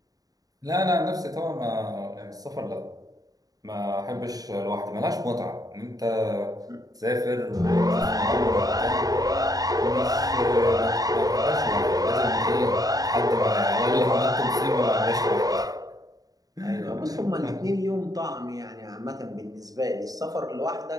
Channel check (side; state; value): left; late; 0.18 ms